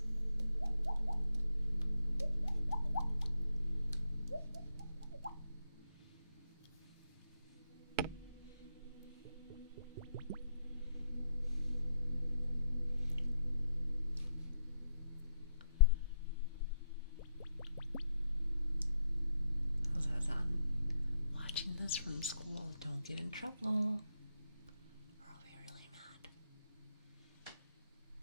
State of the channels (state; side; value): inverted; both; correlation -0.76